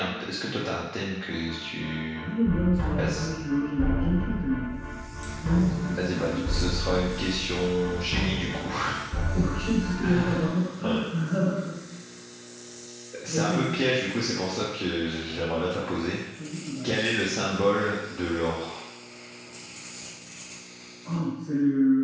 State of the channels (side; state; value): both; identical; correlation 1.00